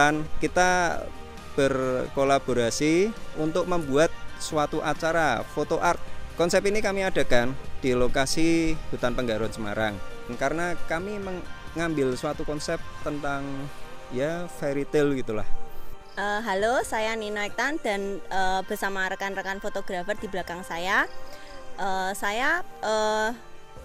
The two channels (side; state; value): both; identical; correlation 1.00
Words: Kita berkolaborasi untuk membuat suatu acara foto art. Konsep ini kami adakan di lokasi Hutan Penggaron Semarang, karena kami mengambil suatu konsep tentang ya fairy tale gitulah. Halo, saya Ninuk Tan dan bersama rekan-rekan fotografer di belakang saya. Saya